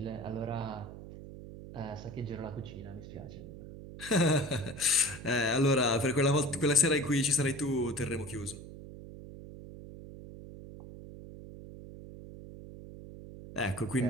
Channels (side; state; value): right; noise; hum, 13 dB below the sound